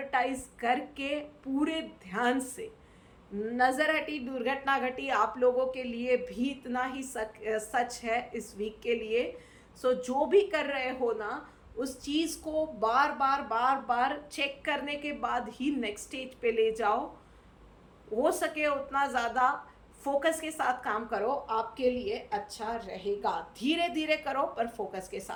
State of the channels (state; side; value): identical; both; correlation 1.00